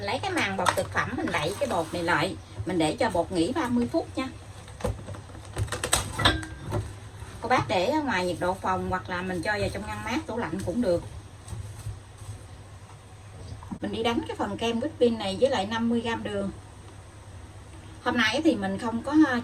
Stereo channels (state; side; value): identical; both; correlation 1.00